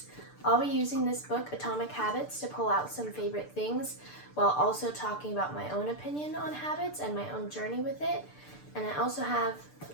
I'll be using this book, Atomic Habits, to pull out some favorite things while also talking about my own opinion on habits and my own journey with it. And I also have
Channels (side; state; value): right; late; 6.8 ms